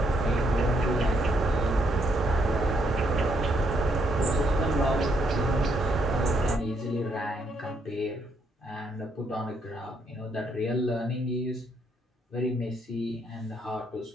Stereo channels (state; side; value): normal; both; correlation 0.74